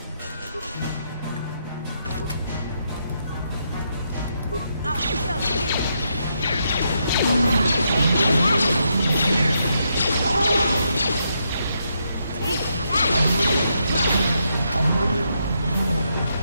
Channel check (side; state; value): both; inverted; correlation -0.79